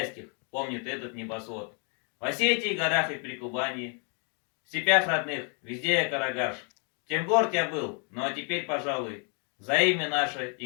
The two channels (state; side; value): quieter; right; 38.8 dB